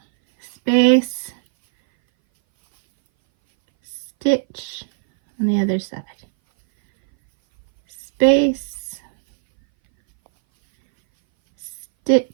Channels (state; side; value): silent; left; 61 dB below the other